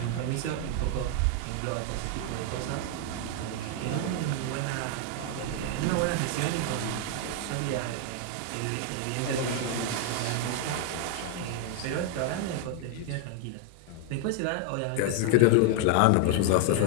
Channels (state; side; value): different; both; correlation 0.00